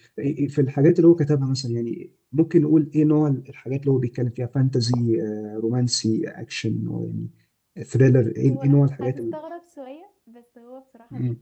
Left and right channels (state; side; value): identical; both; correlation 1.00